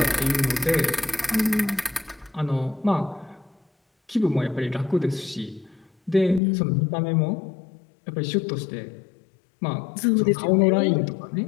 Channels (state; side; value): drops out; right; at 6.4 s